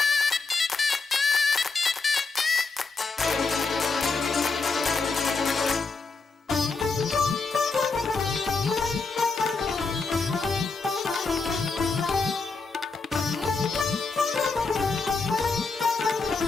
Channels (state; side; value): quieter; right; 4.2 dB